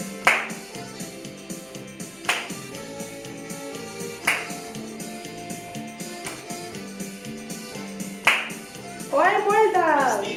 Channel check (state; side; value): identical; both; correlation 1.00